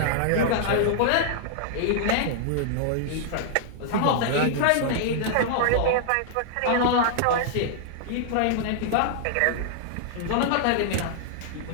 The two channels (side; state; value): both; different; correlation -0.01